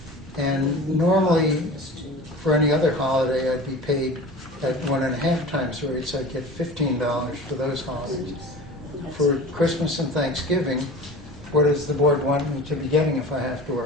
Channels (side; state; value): both; normal; correlation 0.37